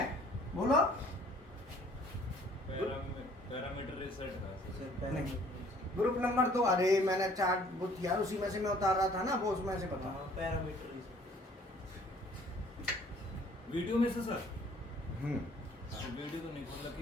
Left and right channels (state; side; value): normal; both; correlation 0.56